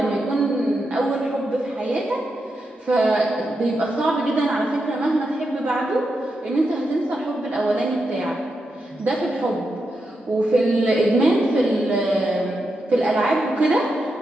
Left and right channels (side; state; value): both; normal; correlation 0.86